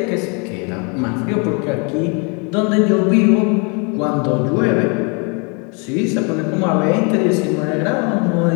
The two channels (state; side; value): quieter; right; 34.0 dB